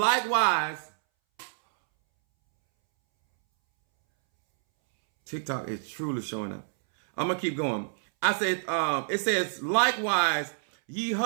TikTok is truly showing up. I'm going to keep going. I said, it says, likewise, ye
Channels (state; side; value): silent; left; 60 dB below the other